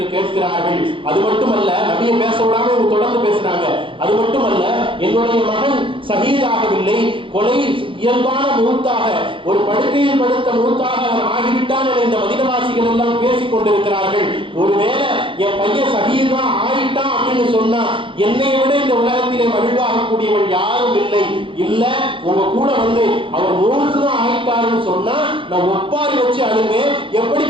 கேட்கிறார்கள். அது மட்டுமல்ல, நபியை பேச விடாம இவங்க தொடர்ந்து பேசுறாங்க. அது மட்டுமல்ல, என்னுடைய மகன் ஷஹீதாகவில்லை, கொலை இயல்பான மூத்தாக, ஒரு படுக்கையில் படுத்த மூத்தாக அவன் ஆகிவிட்டான் என இந்த மதீனவாசிகள் எல்லாம் பேசிக் கொண்டிருக்கிறார்கள். ஒருவேளை என் பையன் ஷஹீதா ஆயிட்டான் அப்படின்னு சொன்னா என்னை விட இந்த உலகத்திலே மகிழ்வாக ஆகக்கூடியவள் யாரும் இல்லை. இல்ல உங்க கூட வந்து அவர் மூழ்குதான் ஆயிட்டாருன்னு சொன்னா நான் ஒப்பாரி வச்சு அழுவேன்.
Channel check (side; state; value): left; late; 0.25 ms